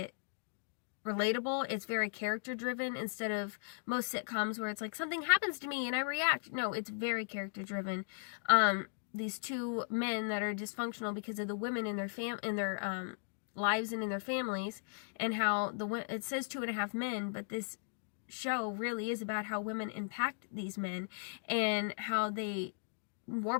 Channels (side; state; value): right; silent; digital silence